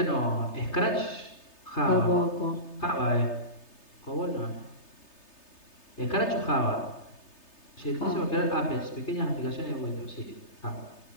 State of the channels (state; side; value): late; right; 3.3 ms